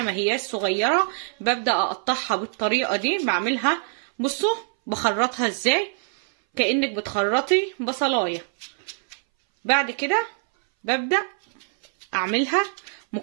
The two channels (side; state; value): left; silent; 60 dB below the other